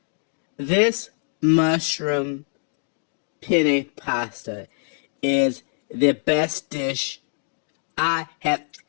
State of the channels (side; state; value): right; silent; digital silence